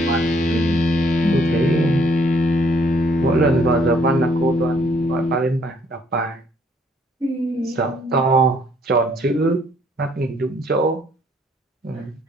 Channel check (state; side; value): normal; both; correlation 0.64